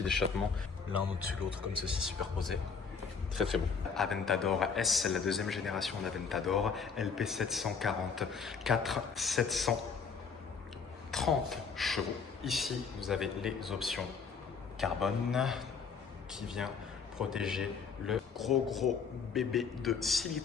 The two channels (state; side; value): quieter; right; 5.7 dB